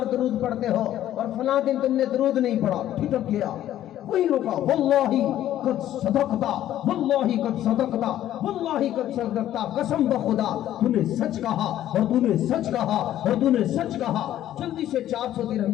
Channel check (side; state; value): right; quieter; 12.4 dB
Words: درود پڑھتے ہو اور فلاں دن تم نے درود نہیں پڑھا. ٹھٹک گیا, وہی رکا, واللہ قد صدقتا, واللہ قد صدقتا, واللہ قد صدقتا, قسم بخدا تو نے سچ کہا اور تو نے سچ کہا اور تو نے سچ کہا. جلدی سے 400